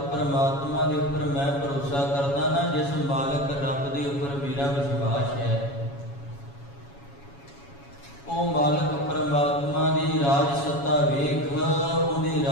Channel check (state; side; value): late; right; 7.2 ms